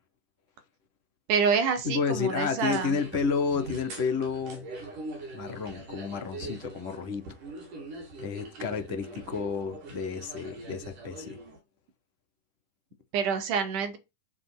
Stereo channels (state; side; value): late; left; 10 ms